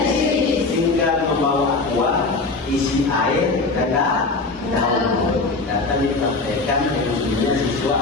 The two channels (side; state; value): right; quieter; 3.7 dB